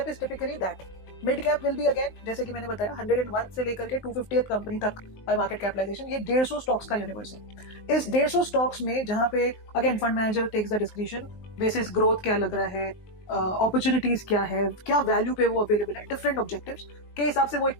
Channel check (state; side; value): late; right; 19 ms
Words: is typically that. Mid cap will be again, जैसे कि मैंने बताया, 101 से लेकर के 250th कंपनी तक बाय मार्केट कैपिटलाइजेशन, ये 150 स्टॉक्स का यूनिवर्स है. इस 150 स्टॉक्स में जहां पे again fund manager takes the discretion basis growth क्या लग रहा है, अपॉर्चुनिटीज क्या है, क्या वैल्यू पे वो अवेलेबल है, डिफरेंट ऑब्जेक्टिव्स के हिसाब से वो एक